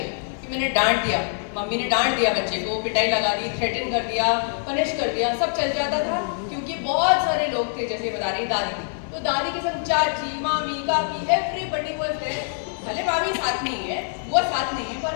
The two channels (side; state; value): right; silent; 62 dB below the other